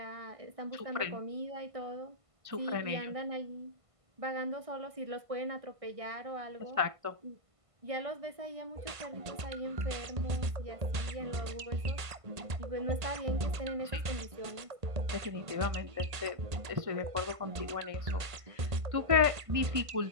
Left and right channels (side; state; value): left; late; 1.5 ms